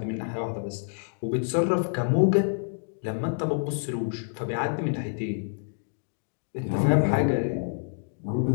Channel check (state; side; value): silent; right; digital silence